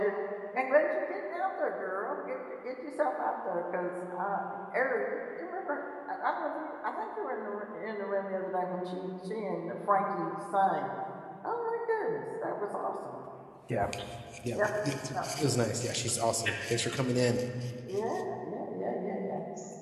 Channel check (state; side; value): identical; both; correlation 1.00